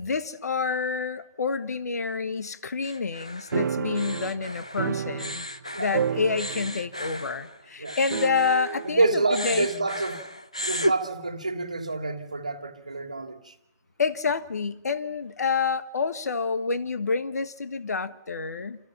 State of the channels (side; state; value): both; inverted; correlation -0.58